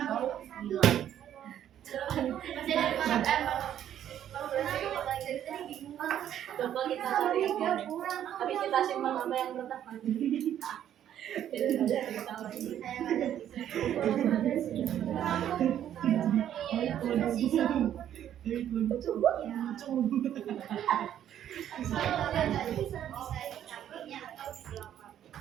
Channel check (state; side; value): quieter; left; 10.6 dB